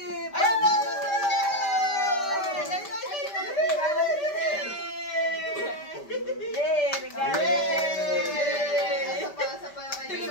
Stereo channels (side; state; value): right; late; 5.1 ms